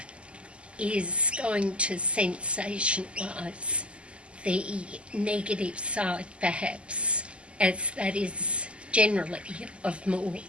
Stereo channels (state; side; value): late; left; 0.054 ms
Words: is going to sensationalise the negative side, perhaps, as that is generally of more